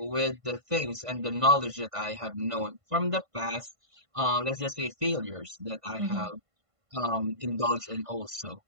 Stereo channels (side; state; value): left; late; 1.5 ms